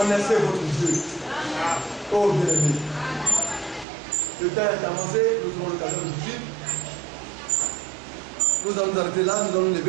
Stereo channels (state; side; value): drops out; left; at 3.9 s